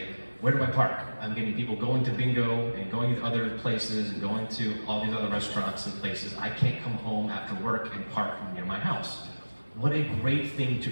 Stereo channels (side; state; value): both; inverted; correlation -1.00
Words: where do I park? I'm getting people going to bingo and going to other places and going to all these other restaurants and places. I can't come home after work and park near my house. What a great thing to